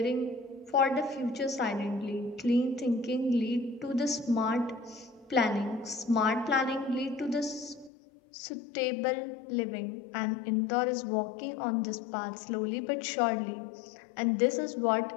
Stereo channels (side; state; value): right; drops out; at 7.9 s